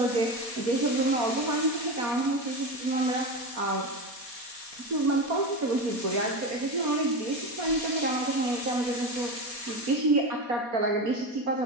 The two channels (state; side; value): late; left; 4.2 ms